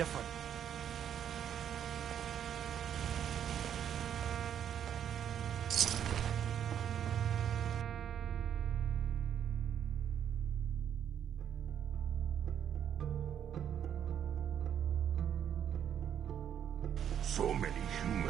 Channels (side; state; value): left; quieter; 9.2 dB